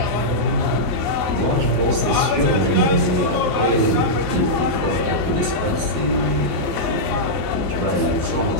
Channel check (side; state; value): left; late; 12 ms